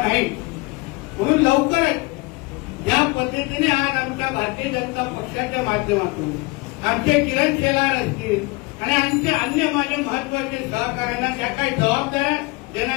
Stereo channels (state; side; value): quieter; right; 25.0 dB